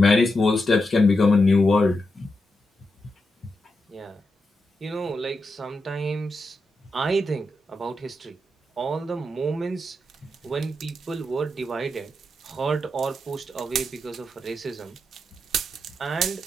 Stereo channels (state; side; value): normal; both; correlation 0.86